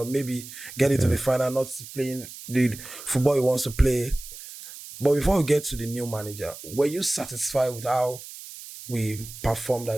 maybe get into the final, not playing the football he wants to play. But before we get to the new manager, were you satisfied with how we performed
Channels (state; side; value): noise; right; hiss, 14 dB below the sound